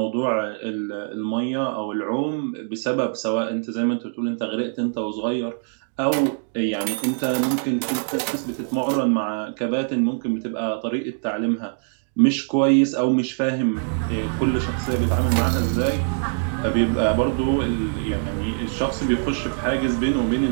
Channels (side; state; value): left; silent; digital silence